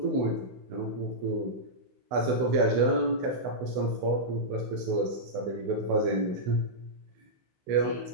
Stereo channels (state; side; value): late; left; 16 ms